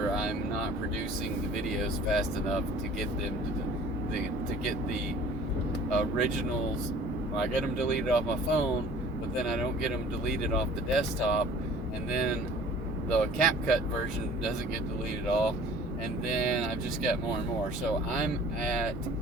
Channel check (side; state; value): both; normal; correlation 0.49